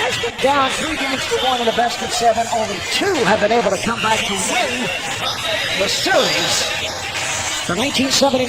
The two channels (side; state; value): both; identical; correlation 1.00